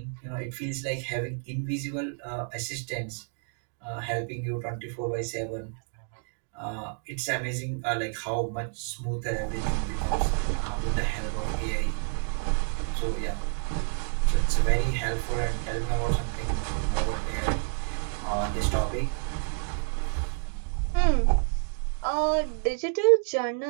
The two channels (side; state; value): left; silent; 58 dB below the other